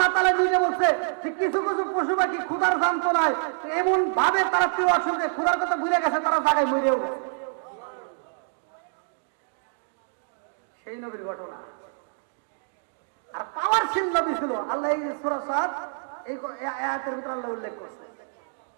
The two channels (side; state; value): left; silent; digital silence